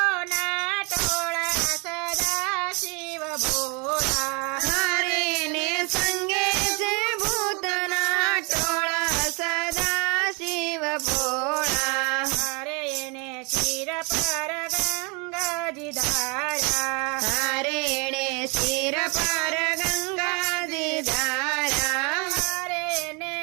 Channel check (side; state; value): left; quieter; 31.7 dB